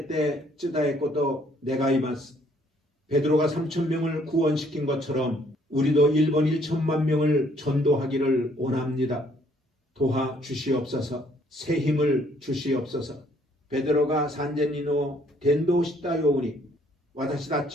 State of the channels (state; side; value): normal; both; correlation 0.64